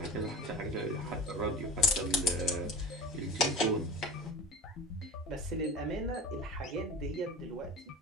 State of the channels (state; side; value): normal; both; correlation 0.34